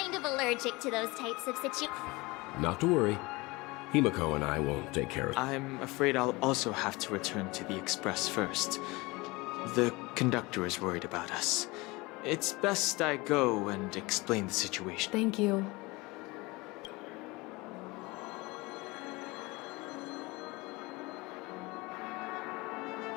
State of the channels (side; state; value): right; quieter; 23.4 dB